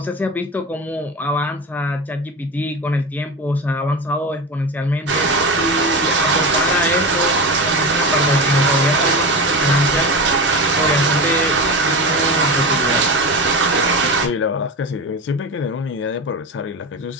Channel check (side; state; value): both; normal; correlation 0.24